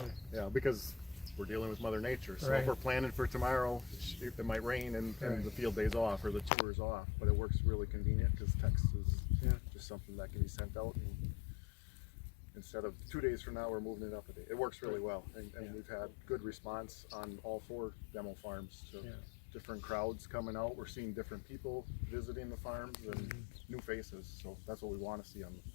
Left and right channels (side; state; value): right; drops out; at 6.5 s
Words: Yeah, because we're dealing with Mother Nature. So if we're planning for tomorrow, it might rain and the field day's off or the tour's off, but it works really convenient because text is just something that can be sent out. And instead of 2 days from now, we're moving it up a day. It works really well, and we've had good response on all 4 demo farms. So different crowds coming out. We're seeing different people visiting the farms and new faces. So that's what we want to see